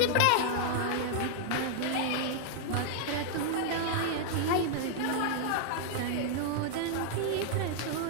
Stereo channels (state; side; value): different; both; correlation -0.01